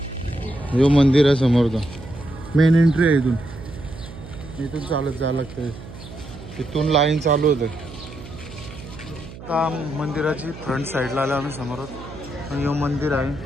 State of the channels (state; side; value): noise; right; hum, 15 dB below the sound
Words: जो मंदिर आहे समोरचा मेन एंट्री आहे. इथून चालत जायला लागतंय. इथून लाईन चालू होते. आता मंदिराची फ्रंट साईडला आलो आम्ही समोरच. हे मंदिर आहे.